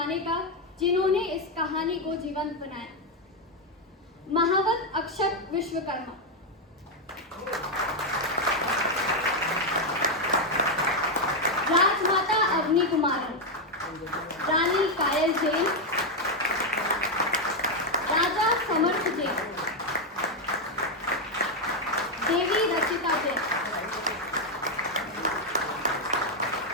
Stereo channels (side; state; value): both; normal; correlation 0.03